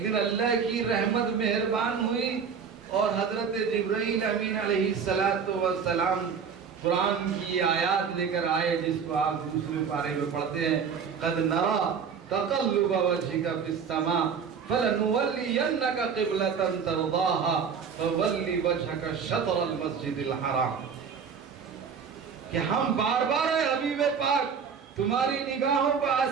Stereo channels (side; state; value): left; quieter; 6.5 dB